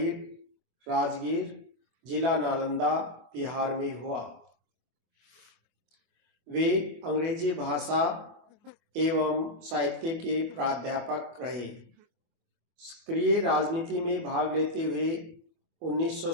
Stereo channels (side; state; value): left; late; 24 ms